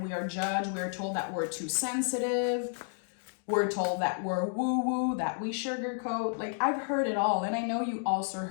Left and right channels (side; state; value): right; silent; 57 dB below the other